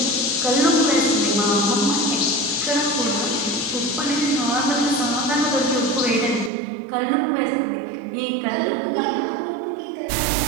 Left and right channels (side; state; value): left; drops out; at 6.5 s